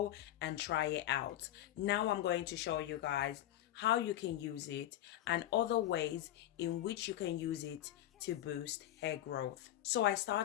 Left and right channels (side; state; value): right; quieter; 13.0 dB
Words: and try it out. Now I'm going to show you guys how you can use it and other ways in which you can use it to boost hair growth. So I